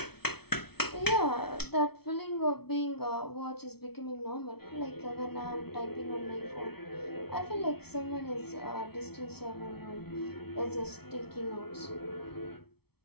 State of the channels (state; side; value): late; right; 0.96 ms